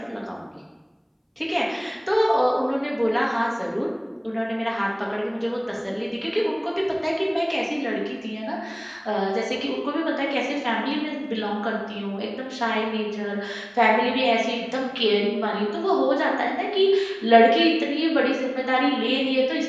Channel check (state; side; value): identical; both; correlation 1.00